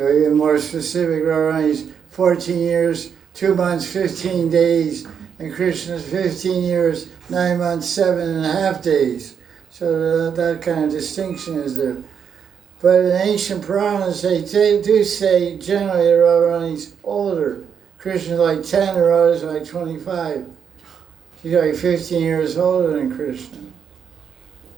even more specific. Radharani's 14 years, 2 months, 15 days, and Krishna's 15 years, 9 months, 7.5 days. So that kind of distinction is there. But in ancient Puranas, they do say generally that Radharani's older. Krishna's like 10, and Radha's like 25. She's like 15 years older than Krishna.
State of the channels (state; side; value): quieter; left; 7.4 dB